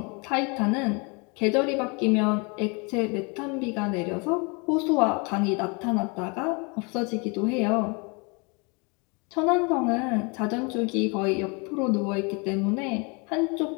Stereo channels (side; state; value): right; quieter; 31.3 dB